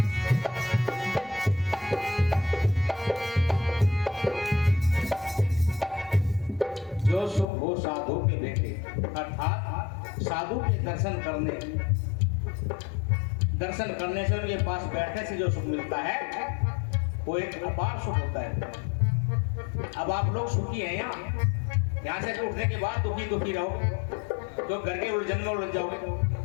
साधु के बेटे, अर्थात साधु के दर्शन करने से उनके पास बैठने से जो सुख मिलता है वो एक अपार सुख होता है। अब आप लोग सुखी हैं यहाँ से उठने के बाद दुखी दुखी रहो, तो घर के उलझन में उलझ जाओगे,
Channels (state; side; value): drops out; right; at 7.5 s